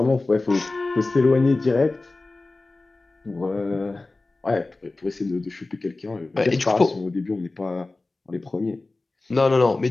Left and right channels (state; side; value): quieter; right; 3.3 dB